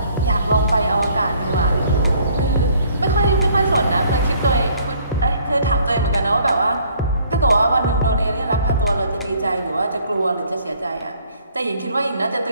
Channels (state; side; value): inverted; both; correlation -0.61